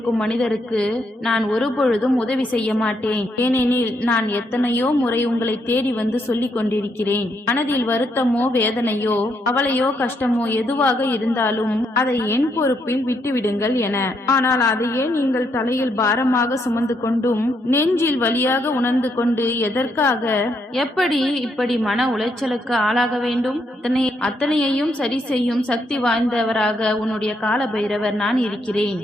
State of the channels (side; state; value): both; normal; correlation 0.76